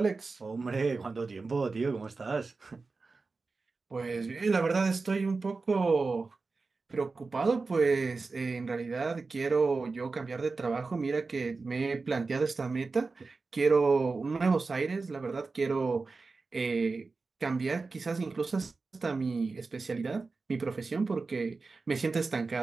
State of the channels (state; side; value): quieter; left; 4.0 dB